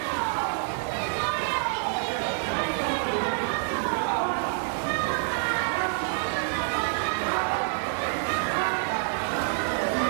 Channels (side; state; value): left; silent; 60 dB below the other